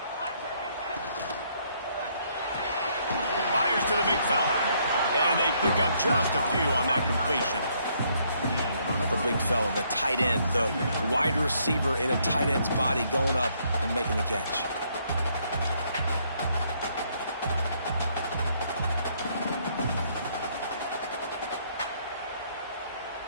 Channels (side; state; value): both; inverted; correlation -0.69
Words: Fires to the big fella. And they pick up just a few on that completion. The big fella, the tight end, the wide receiver in a tight end's body going up and making the catch.